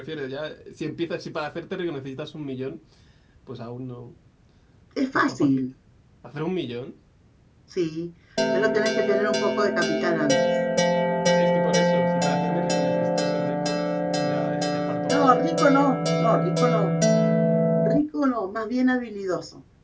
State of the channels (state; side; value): identical; both; correlation 1.00